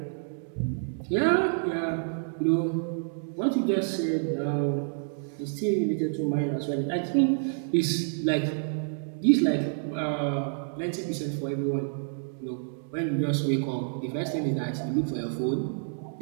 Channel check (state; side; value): silent; left; digital silence